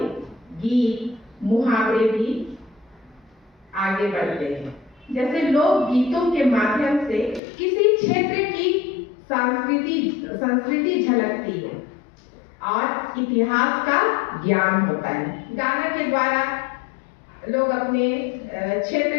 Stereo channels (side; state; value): right; drops out; at 7.4 s